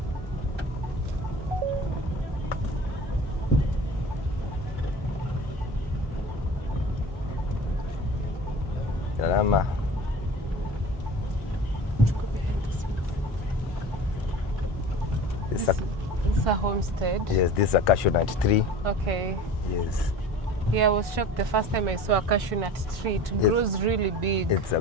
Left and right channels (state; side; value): normal; both; correlation 0.39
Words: Salama. This is a homestead? Yes, this is a cashew nut tree. Okay. Yes. Yeah, I was shocked the first time I saw a cashew nut tree. It grows really big. It's a